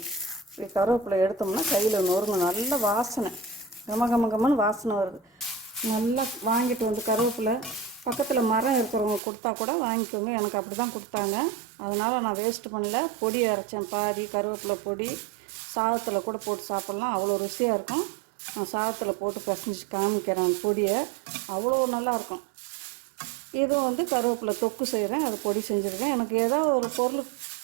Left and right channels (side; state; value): left; drops out; at 9.2 s